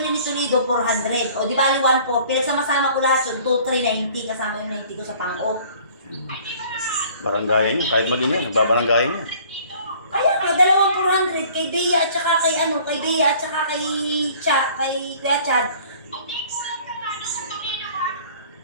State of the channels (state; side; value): inverted; both; correlation -0.52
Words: ni Toledo, 400. O di bali 1,400. Pinagsama-sama ko lahat yun, 2,390. Kasama yung 90 ko sa pang-o. Baranggayan niya. Kahit mag-ina, nagbabaranggayan niya. Kaya nga, dalawang 400 kay Bea at saka kay kay Bea at saka kay Kuya Chad.